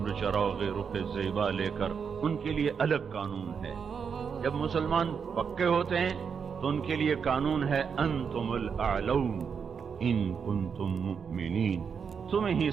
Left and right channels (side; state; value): left; quieter; 6.5 dB